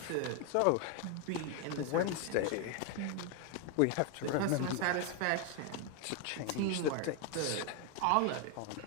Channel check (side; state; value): both; different; correlation 0.01